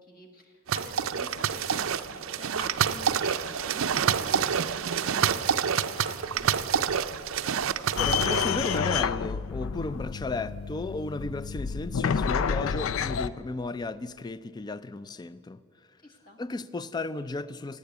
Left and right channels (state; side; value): normal; both; correlation 0.07